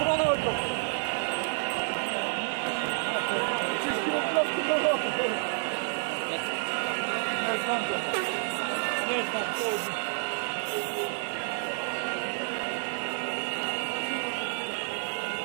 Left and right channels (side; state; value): left; silent; 58 dB below the other